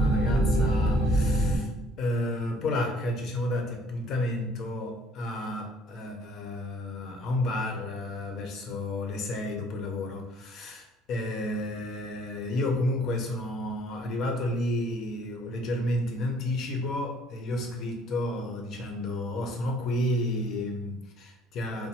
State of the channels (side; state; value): both; normal; correlation 0.58